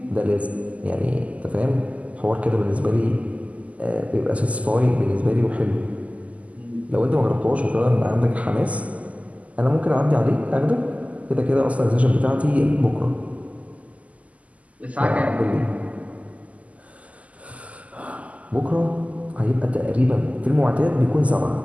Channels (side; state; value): left; late; 0.070 ms